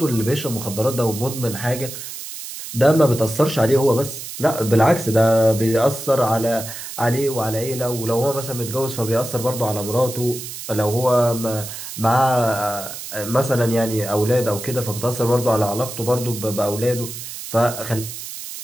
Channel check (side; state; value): right; noise; hiss, 10 dB below the sound